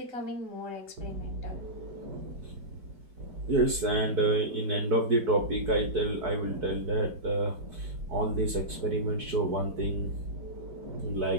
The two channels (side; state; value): left; late; 4.5 ms